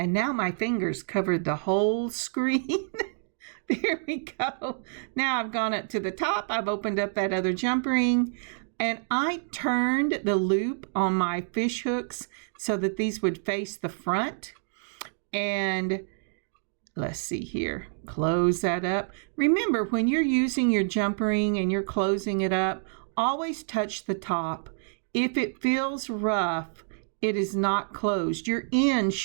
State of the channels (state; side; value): silent; left; digital silence